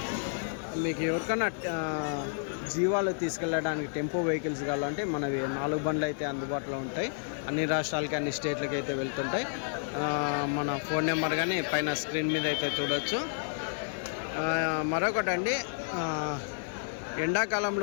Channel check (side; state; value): right; silent; digital silence